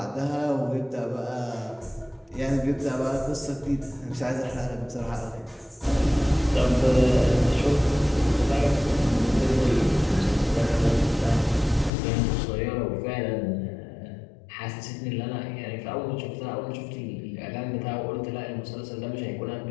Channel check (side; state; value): right; drops out; at 11.9 s